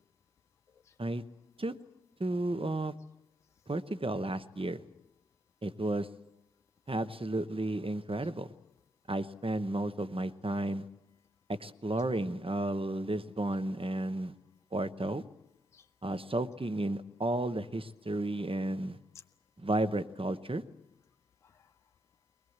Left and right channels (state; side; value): normal; both; correlation 0.79